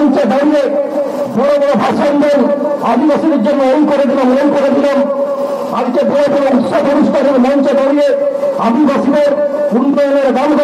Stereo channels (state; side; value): identical; both; correlation 1.00